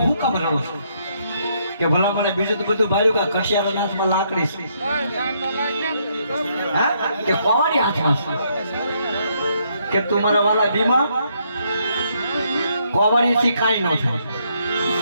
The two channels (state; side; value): inverted; both; correlation -0.73